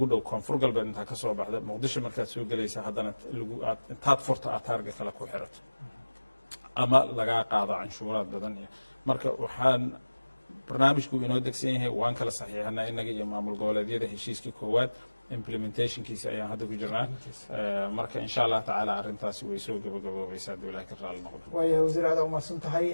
dhow koonfur galbeed intaa ka soo baxda muqdisho markaad soo gelaysa haddana intaad furta aad taarga kale ku xirato ama lagaa qaado canshuuraad badan iyo marka waxaan barnaamijku inoo degsan yahay waan kala saxiixanaa innaga iyo maamul goboleedyada heshiiskii koowaad implementationkiisa ayaan hadda ku jirnaa marka insha allah tacaala arrintaasi way soo gabagaboobaysaa hadduu ilahay ka raali noqdo waaya wasiir aada umahadsan tahay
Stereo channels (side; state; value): both; inverted; correlation -1.00